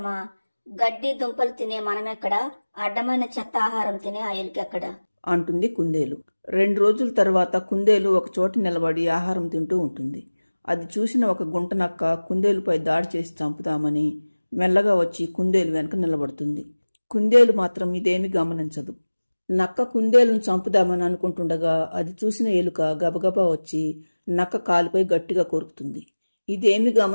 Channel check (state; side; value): inverted; both; correlation -1.00